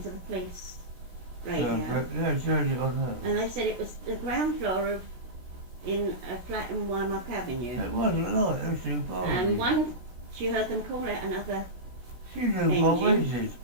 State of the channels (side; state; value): left; late; 16 ms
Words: the police radio. Yeah, she heard it on her. And they said it was the ground floor in a flat in Wymark Avenue. It wasn't like it was too far. And one, she heard them call out another, She knew what engine. ways it.